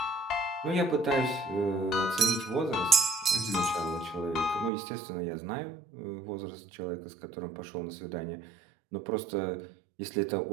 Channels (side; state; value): left; drops out; at 4.7 s